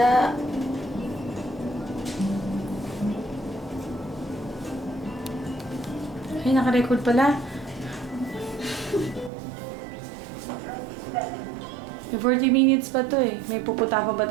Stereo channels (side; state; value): left; drops out; at 9.3 s